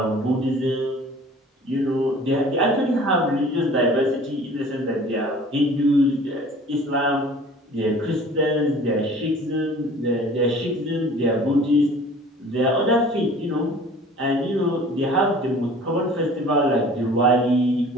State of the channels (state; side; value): normal; both; correlation 0.47